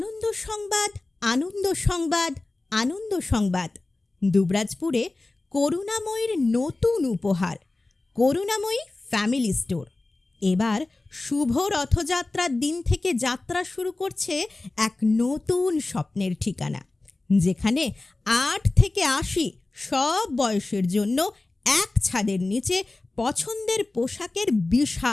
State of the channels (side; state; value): right; quieter; 3.1 dB